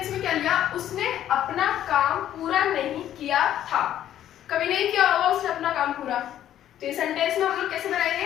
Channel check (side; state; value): right; quieter; 11.5 dB